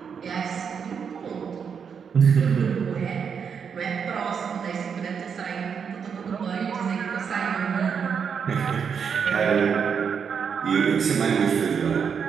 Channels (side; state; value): left; quieter; 6.7 dB